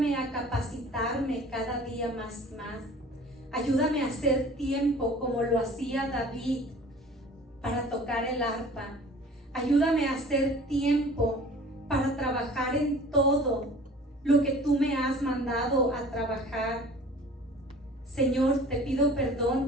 a capacitarme cada día más. Ayúdame a hacer tiempo como lo hacía David para tocar el arpa. Ayúdame a hacer tiempo para trabajar en todo lo que tú me has mandado a trabajar. Señor, te pido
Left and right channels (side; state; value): both; normal; correlation 0.46